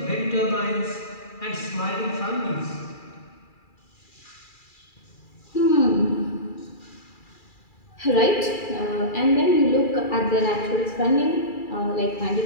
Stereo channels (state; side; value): late; right; 2.4 ms